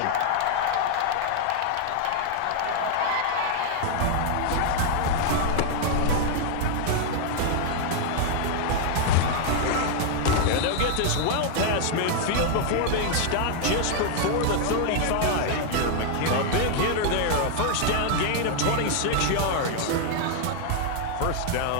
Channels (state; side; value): different; both; correlation 0.00